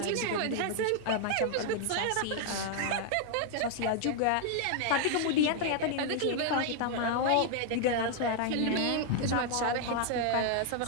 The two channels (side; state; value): both; different; correlation 0.00